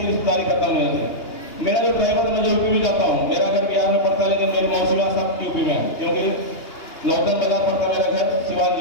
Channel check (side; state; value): right; late; 2.9 ms